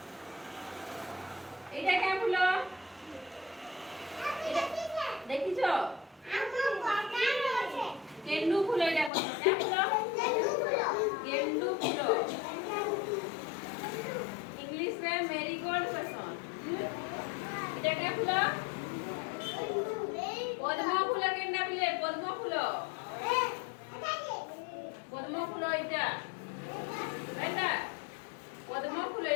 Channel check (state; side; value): drops out; right; at 9.1 s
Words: এটা কেমন ফুল দেখিছো গেন্ডু ফুল এটা কোন গেন্ডু ফুল इंग्लिश में मेरीगोल्ड पसंद এটা কে ফুল পদ্ম ফুল কেন্ডা পিলে পদ্ম ফুল এটা এটা পদ্ম ফুল